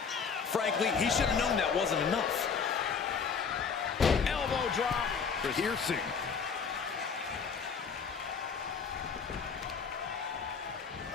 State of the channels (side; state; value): right; quieter; 5.9 dB